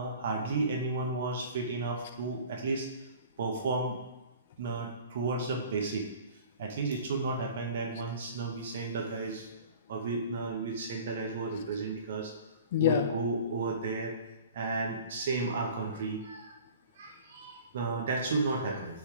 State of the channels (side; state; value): both; inverted; correlation -0.43